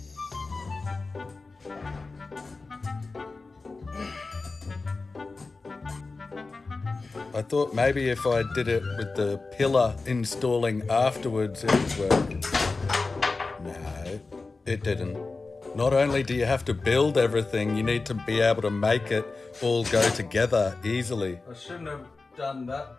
I thought maybe if I did it with the pillar installing afterwards, it would work. No, it didn't. Not only do you have to build everything, you need to be able to make it all go together easily. I shouldn't have done that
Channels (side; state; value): right; quieter; 3.8 dB